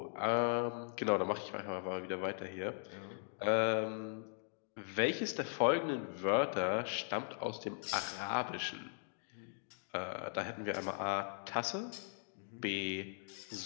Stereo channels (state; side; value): silent; right; digital silence